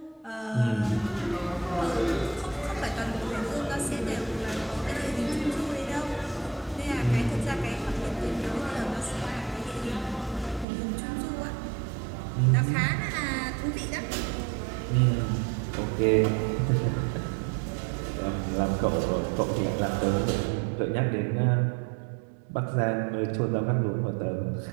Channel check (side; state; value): left; drops out; at 10.7 s